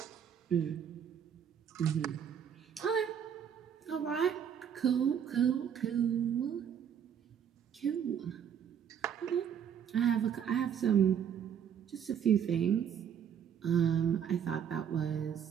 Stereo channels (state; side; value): quieter; left; 8.4 dB